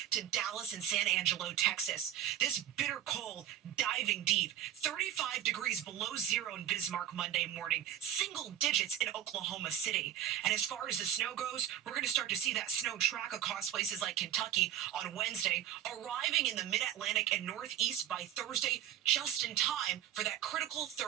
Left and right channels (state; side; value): quieter; left; 10.6 dB